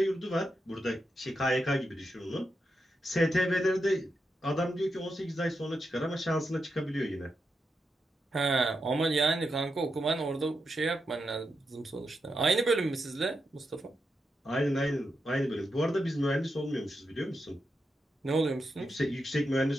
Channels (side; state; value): both; normal; correlation 0.86